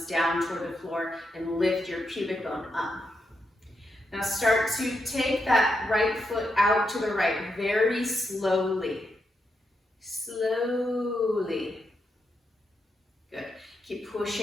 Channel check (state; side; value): normal; both; correlation 0.83